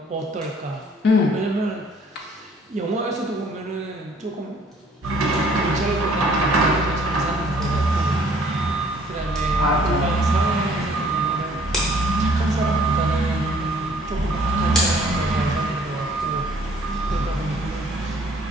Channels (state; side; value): normal; both; correlation 0.58